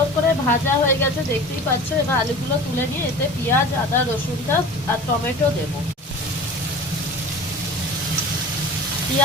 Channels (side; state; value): both; normal; correlation 0.38